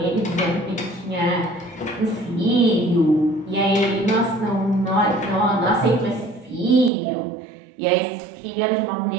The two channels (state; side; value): drops out; left; at 6.9 s